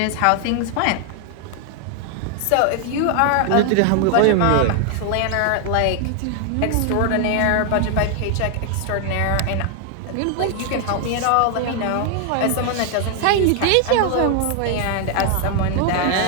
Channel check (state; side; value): different; both; correlation 0.00